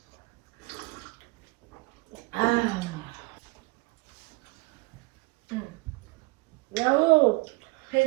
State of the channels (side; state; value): left; quieter; 25.0 dB